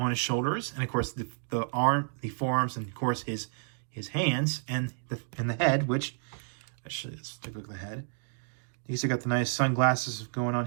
his shoulders, and of course the forearms, and of course his hands and the head. Which actually, let's take a look at the head. He's got the nice sunglasses going on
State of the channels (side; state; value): left; silent; digital silence